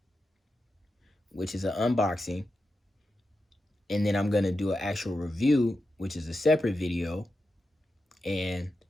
which is an unboxing, and then I'm going to do an actual review, which is a separate video, and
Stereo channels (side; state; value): both; normal; correlation 0.89